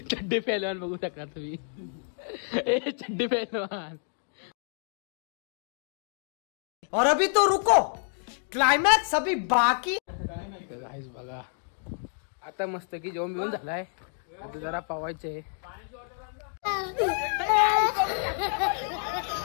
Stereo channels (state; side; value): silent; right; 59 dB below the other